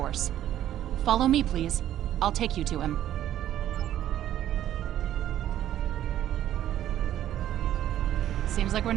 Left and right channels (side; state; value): left; quieter; 12.0 dB